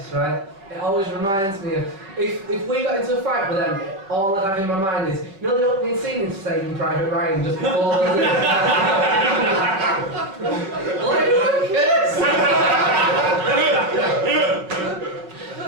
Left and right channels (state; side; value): late; left; 5.2 ms